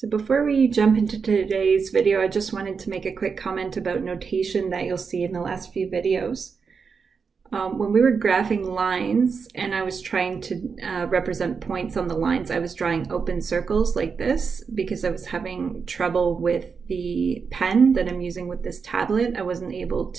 before we jump into today's video, I just wanted to make a quick comment about notation that you'll see in the last few videos. When we were graphing lines and I was trying to represent points on the lines, I was drawing open circles like this because I was having trouble with the pen that I'm using with this tablet. I wasn't able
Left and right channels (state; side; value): quieter; left; 5.6 dB